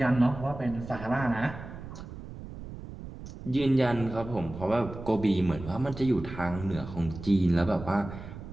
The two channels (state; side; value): noise; right; rumble, 12 dB below the sound